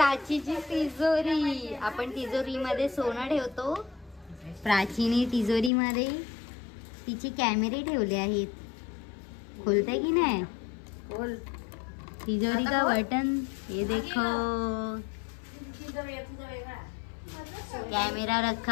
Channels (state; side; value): drops out; right; at 5.7 s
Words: तिजोरी. आपण तिजोरीमध्ये सोनं ठेवतो. प्राचीने तिजोरीमध्ये तिचे कॅमेरे ठेवले आहेत. खोलते की नाही? बोल. तिजोरी का बटन ये देखो. कॅमेरा